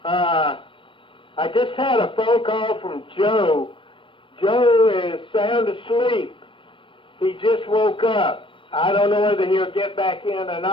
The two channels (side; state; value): right; late; 0.25 ms